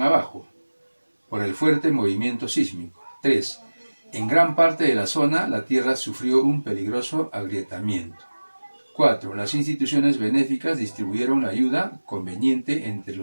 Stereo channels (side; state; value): both; inverted; correlation -1.00